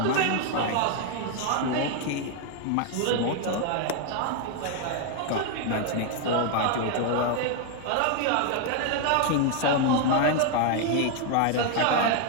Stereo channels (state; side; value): different; both; correlation 0.01